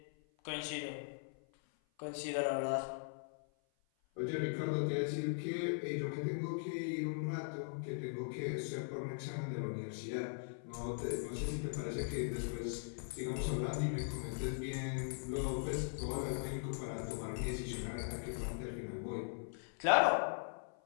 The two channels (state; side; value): silent; right; 51 dB below the other